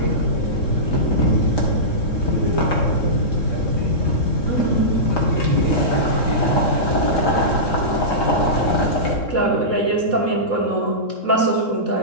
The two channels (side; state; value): right; late; 3.7 ms